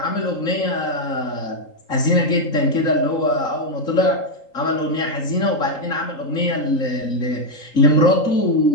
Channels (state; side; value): late; right; 3.8 ms